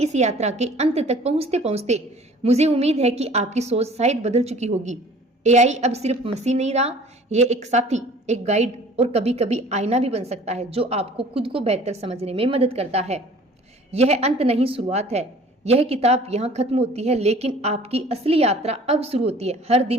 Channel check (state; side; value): normal; both; correlation 0.49